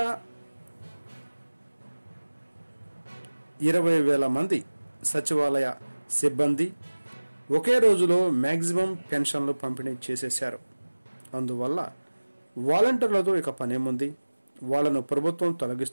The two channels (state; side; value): inverted; both; correlation -1.00